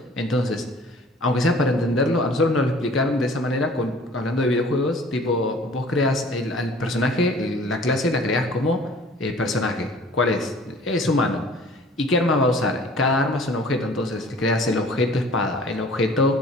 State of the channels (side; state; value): both; normal; correlation 0.50